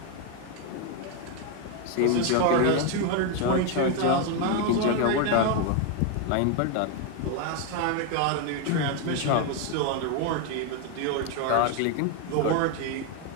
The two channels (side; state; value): both; different; correlation 0.01